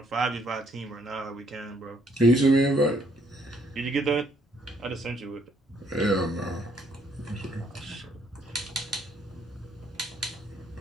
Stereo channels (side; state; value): both; normal; correlation 0.68